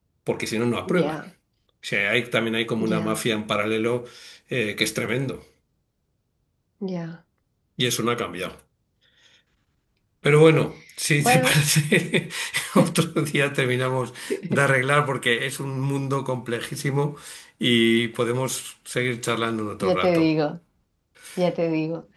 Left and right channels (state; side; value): identical; both; correlation 1.00